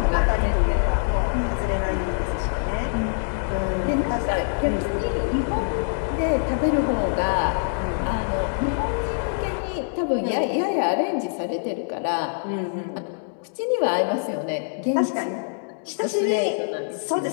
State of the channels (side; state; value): right; silent; digital silence